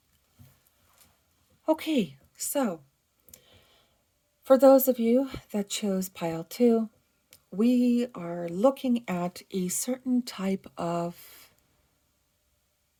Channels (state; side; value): identical; both; correlation 1.00